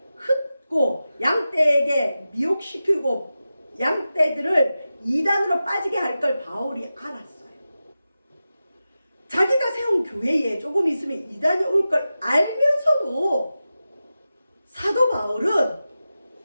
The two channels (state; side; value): inverted; both; correlation -0.93